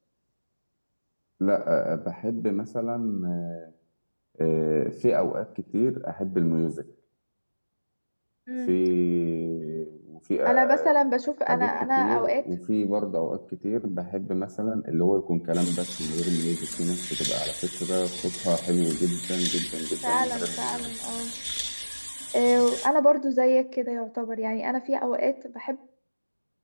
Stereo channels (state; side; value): inverted; both; correlation -1.00